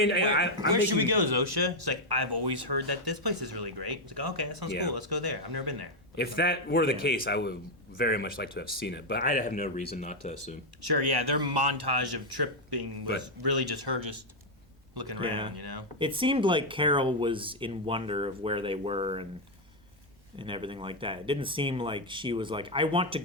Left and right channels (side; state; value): both; normal; correlation 0.01